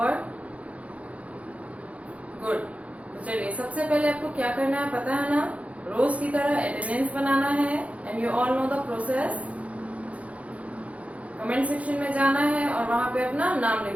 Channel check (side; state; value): left; late; 0.065 ms